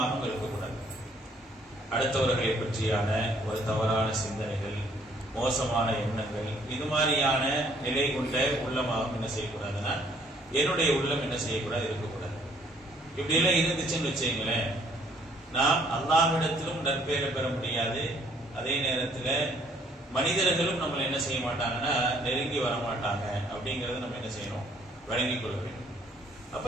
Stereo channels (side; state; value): both; normal; correlation 0.63